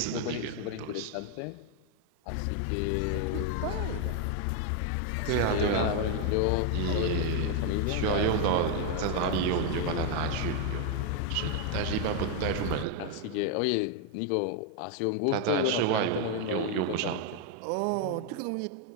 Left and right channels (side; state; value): both; different; correlation 0.00